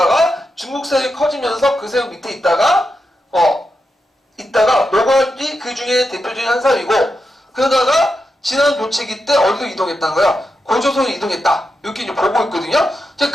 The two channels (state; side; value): normal; both; correlation 0.87